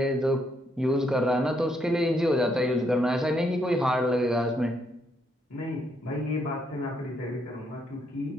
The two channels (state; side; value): normal; both; correlation 0.74